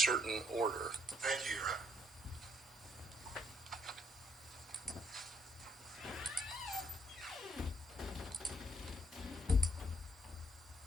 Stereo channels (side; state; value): both; normal; correlation 0.71